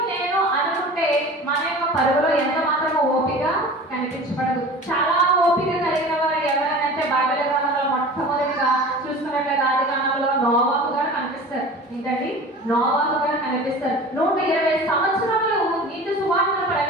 నేను అనుకుంటే మన యొక్క పరుగులో ఎంత మాత్రమో ఓపిక కనిపించబడదు. చాలా ఓపిక కలిగిన వారు ఎవరైనా బైబిల్ గ్రంథంలో మొట్టమొదటిగా చూసుకున్నట్లయితే ఆదికాండంలో నోవాహు గారు కనిపిస్తారు. ఏంటండి? నోవాహు గారు కనిపిస్తారు. 120 సంవత్సరాలు నీతి సువార్తను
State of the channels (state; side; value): normal; both; correlation 0.38